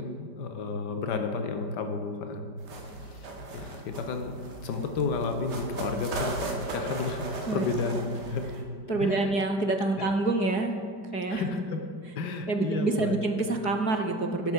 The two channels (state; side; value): late; right; 5.1 ms